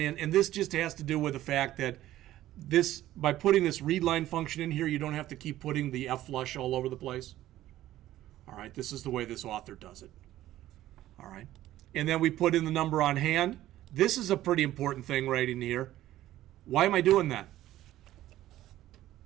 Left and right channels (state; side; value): quieter; left; 14.2 dB